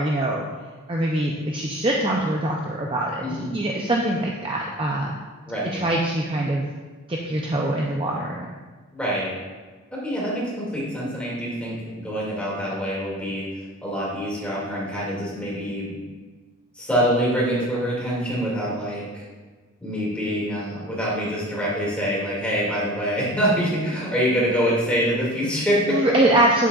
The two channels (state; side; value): normal; both; correlation 0.41